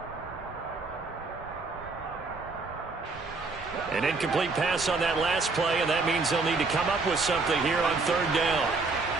An incomplete pass on that last play, and that means they'll need to come up with something here on 3rd down.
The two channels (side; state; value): left; quieter; 3.9 dB